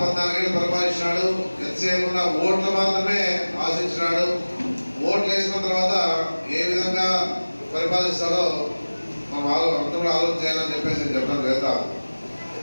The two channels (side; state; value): both; inverted; correlation -1.00